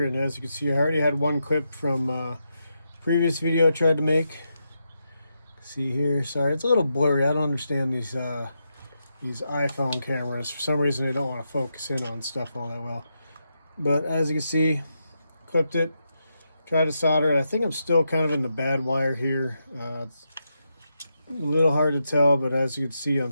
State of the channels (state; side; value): inverted; both; correlation -0.85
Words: and as you can see, I already had one clip from previous video I tried to make. See here, sorry, it's a little blurry. I don't understand these iPhone cameras. For some reason, they don't want to focus in on stuff all that well. But as you can see, clipped it. Tried to solder it. I think I'm still kind of in the bad wire here. It's a little hard to tell, but as you can see on